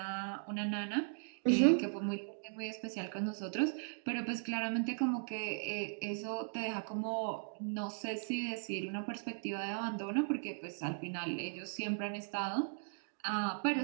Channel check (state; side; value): silent; left; digital silence